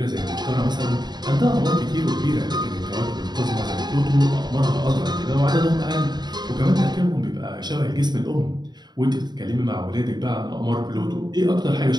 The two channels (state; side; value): late; left; 0.20 ms